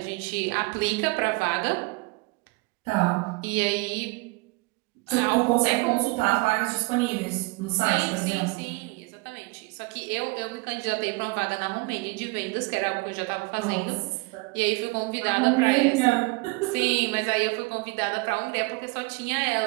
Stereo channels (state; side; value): quieter; left; 26.4 dB